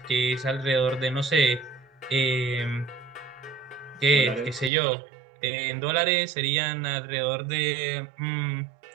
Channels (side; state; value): left; drops out; at 4.7 s